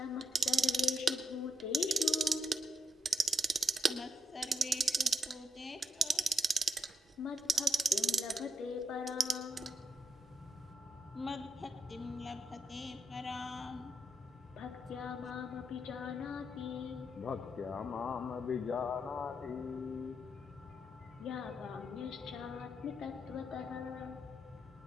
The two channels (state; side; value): normal; both; correlation 0.81